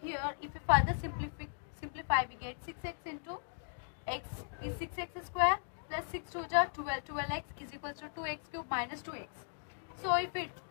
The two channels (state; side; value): silent; right; digital silence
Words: if we further simplify, we get 6x into x is 6x square plus 6 to 12x is equals to 2x cube minus 2x. So if we